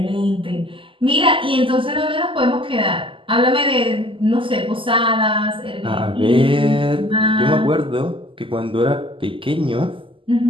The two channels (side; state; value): left; late; 0.25 ms